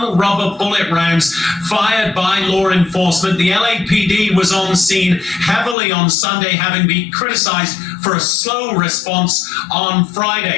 rubber bullet rounds fired by law enforcement. The LAPD was on scene heavily on Sunday, having been criticized for a slow response on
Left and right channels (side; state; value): right; drops out; at 5.8 s